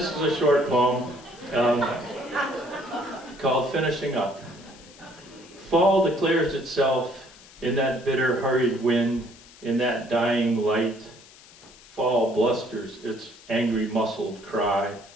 is a short poem called Finishing Up. Fall declares itself in that bitter, hurried wind, in that dying light. Fall blusters its angry, muscled cry.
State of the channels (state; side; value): noise; left; hiss, 23 dB below the sound